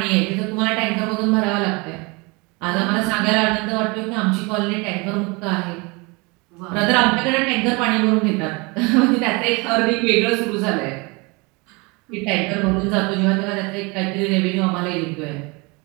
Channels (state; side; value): quieter; left; 27.5 dB